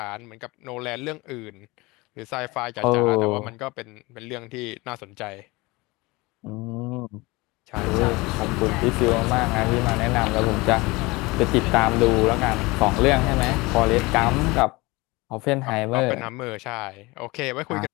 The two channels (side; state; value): right; quieter; 23.3 dB